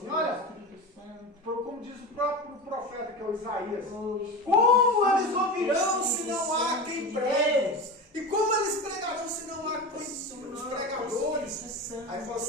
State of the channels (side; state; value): both; normal; correlation 0.25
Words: olha, como diz o próprio profeta, que é o Isaías, como eles ouvirão se não há quem pregue? E como eles pregarão se não há os pregadores? Aí fala